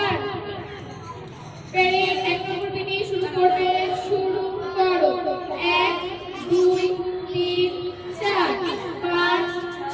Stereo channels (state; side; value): identical; both; correlation 1.00